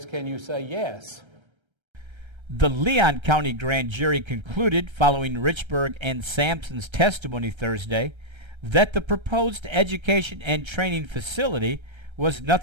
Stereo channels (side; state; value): left; late; 1.3 ms